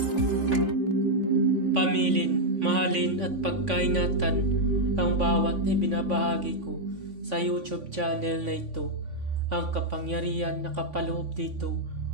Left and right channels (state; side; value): late; left; 3.5 ms